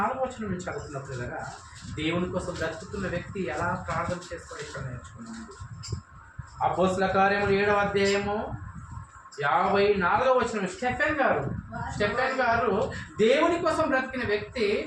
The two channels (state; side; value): identical; both; correlation 1.00